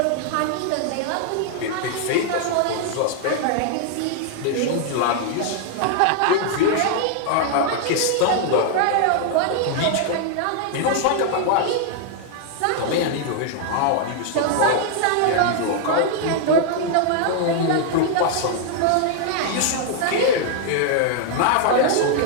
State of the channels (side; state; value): both; different; correlation 0.00